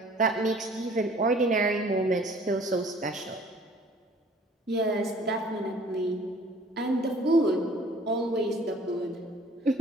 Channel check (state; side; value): normal; both; correlation 0.57